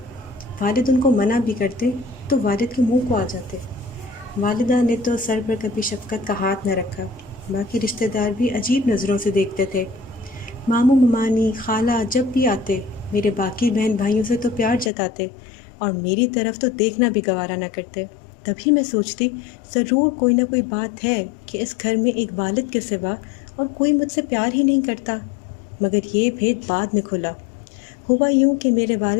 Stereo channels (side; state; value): right; drops out; at 14.9 s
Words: والد ان کو منع بھی کرتے تو والد کے منہ کو آ جاتے۔ والدہ نے تو سر پر کبھی شفقت کا ہاتھ نہ رکھا، باقی رشتہ دار بھی عجیب نظروں سے دیکھتے تھے۔ ماموں ممانی خالہ جب بھی آتے میرے باقی بہن بھائیوں سے تو پیار جتاتے اور میری طرف تو دیکھنا بھی گوارا نہ کرتے۔ تبھی میں سوچتی، ضرور کوئی نہ کوئی بات ہے کہ اس گھر میں ایک والد کے سوا اور کوئی مجھ سے پیار ہی نہیں کرتا، مگر یہ بھید بعد میں کھلا۔ ہوا یوں کہ میرے